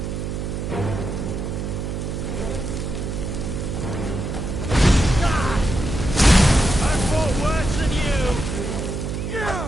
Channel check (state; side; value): noise; right; hum, 4 dB below the sound